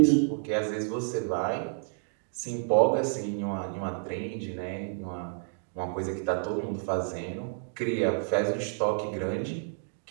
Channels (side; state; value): left; silent; digital silence